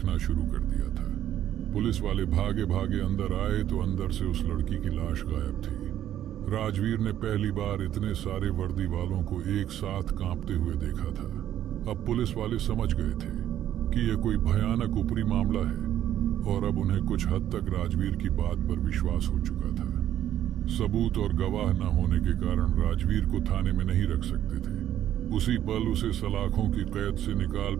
शुरू कर दिया था। पुलिस वाले भागे भागे अंदर आए तो अंदर से उस लड़की की लाश गायब थी। राजवीर ने पहली बार इतने सारे वर्दी वालों को एक साथ कांपते हुए देखा था। अब पुलिस वाले समझ गए थे कि यह कोई भयानक ऊपरी मामला है और अब उन्हें कुछ हद तक राजवीर की बात पर विश्वास हो चुका था। सबूत और गवाह न होने के कारण राजवीर को थाने में नहीं रख सकते थे। उसी पल उसे सलाखों की कैद से निकाल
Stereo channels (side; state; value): left; quieter; 11.5 dB